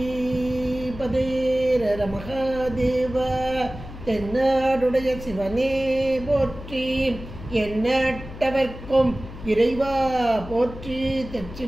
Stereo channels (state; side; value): noise; left; hum, 13 dB below the sound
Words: பதே ரர மகாதேவ, தென்னாடுடைய சிவனே போற்றி, எண்ணற்றவர்க்கும் இறைவா போற்றி.